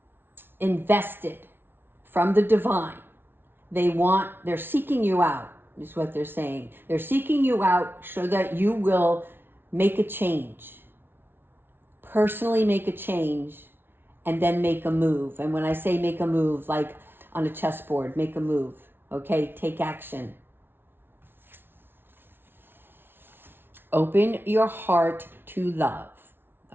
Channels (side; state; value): left; late; 0.11 ms